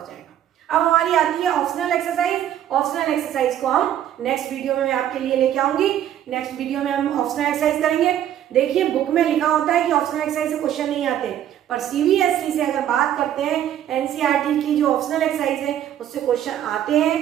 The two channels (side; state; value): left; quieter; 11.0 dB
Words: जाएगा। अब हमारी आती है ऑप्शनल एक्सरसाइज। ऑप्शनल एक्सरसाइज को हम नेक्स्ट वीडियो में मैं आपके लिए लेके आऊंगी। नेक्स्ट वीडियो में हम ऑप्शनल एक्सरसाइज करेंगे। देखिए बुक में लिखा होता है कि ऑप्शनल एक्सरसाइज से क्वेश्चन नहीं आते, पर सीबीएसई से अगर बात करते हैं, एनसीईआरटी की जो ऑप्शनल एक्सरसाइज है उससे क्वेश्चन आते